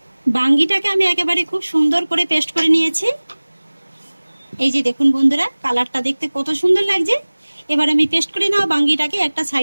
বাঙ্গিটাকে আমি একেবারে খুব সুন্দর করে পেস্ট করে নিয়েছি। এই যে দেখুন বন্ধুরা, কালারটা দেখতে কত সুন্দর লাগছে। এবার আমি পেস্ট করে নেওয়া বাঙ্গিটাকে একটা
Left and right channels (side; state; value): both; inverted; correlation -1.00